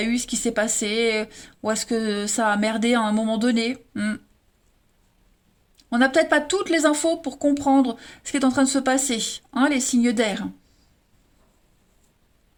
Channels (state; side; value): identical; both; correlation 1.00